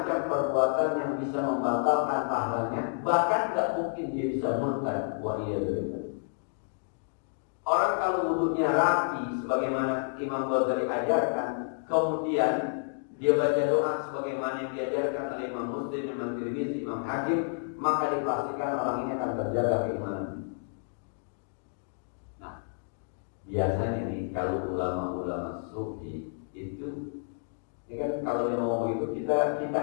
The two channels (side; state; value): right; silent; digital silence